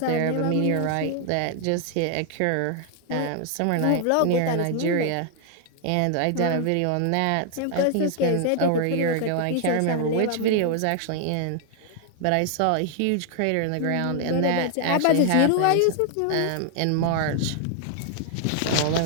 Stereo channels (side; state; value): both; different; correlation 0.00